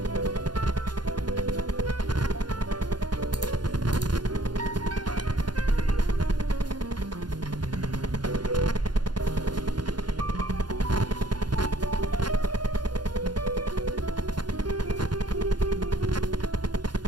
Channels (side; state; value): left; late; 0.71 ms